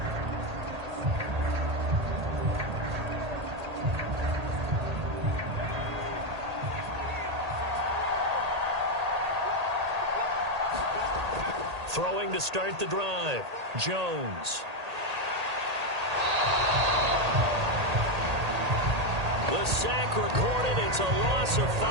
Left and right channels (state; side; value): late; left; 1.8 ms